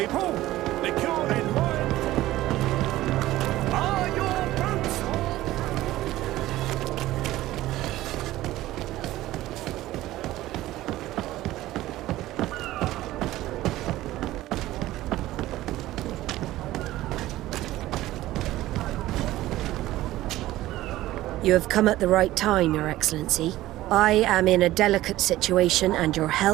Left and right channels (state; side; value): quieter; left; 15.9 dB